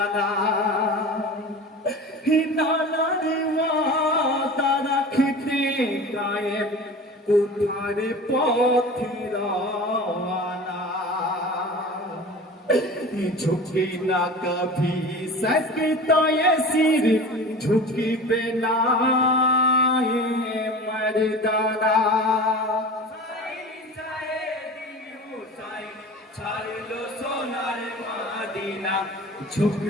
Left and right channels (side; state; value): both; normal; correlation 0.36